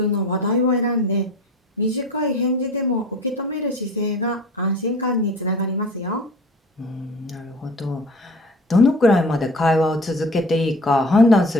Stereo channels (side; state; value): both; normal; correlation 0.41